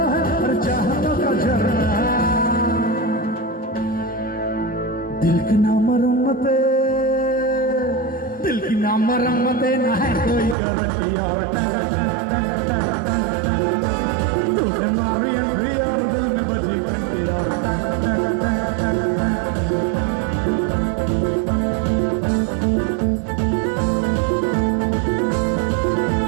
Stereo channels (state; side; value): drops out; left; at 10.6 s